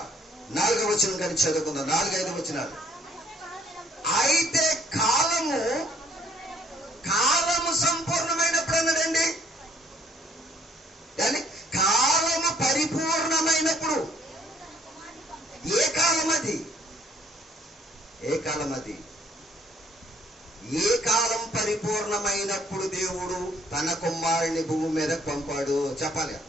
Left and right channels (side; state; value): both; normal; correlation 0.63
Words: 4వ వచనం కానీ చదువుకుందాం. 4-5 వచనాలు. అయితే కాలము సంపూర్ణమైనప్పుడు అన్నాడండి. కానీ కాలము పరిపూర్ణమైనప్పుడు. ఏ కాలం అది? ఏ కాలం అది? ఏ కాలం పరిపూర్ణమైనప్పుడు దేవుడు తన కుమారుని భూమి మీద పంపాడు? చెప్పాలి.